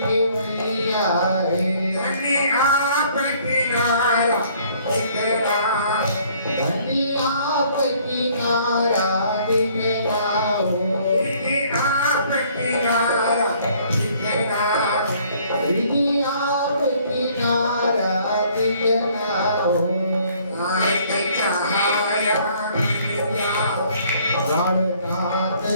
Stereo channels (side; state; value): both; inverted; correlation -0.60